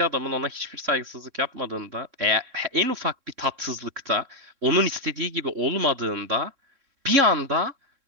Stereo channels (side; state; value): left; late; 3.6 ms